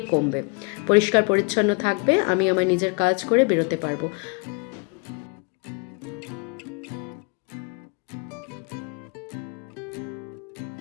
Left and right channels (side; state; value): right; quieter; 31.9 dB